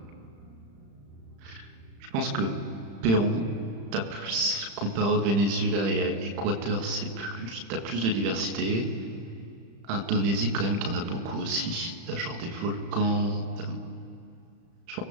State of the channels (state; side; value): late; left; 35 ms